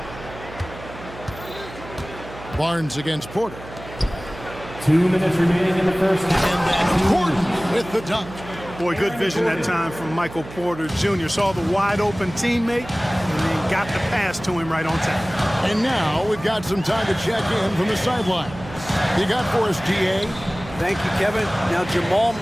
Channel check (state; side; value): noise; right; hum, 15 dB below the sound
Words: Barnes against Porter. 2 minutes remaining in the first half. And then Gordon with the dunk. Boy, good vision that time from Michael Porter Jr. Saw the wide open teammate and then got the pass to him right on time. And now we've got some time to check in from the sideline. You got for us, DA? Thank you, Kevin. Now, Jamal